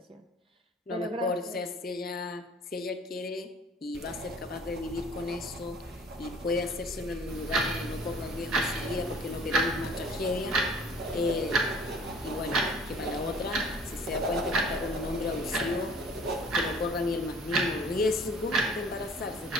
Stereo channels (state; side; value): normal; both; correlation 0.51